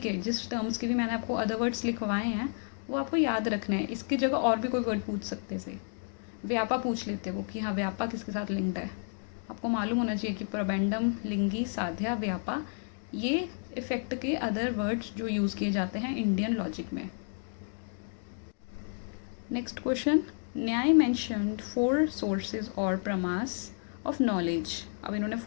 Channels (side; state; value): right; silent; 56 dB below the other